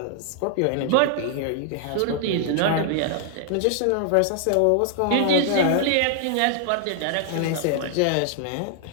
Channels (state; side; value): different; both; correlation 0.00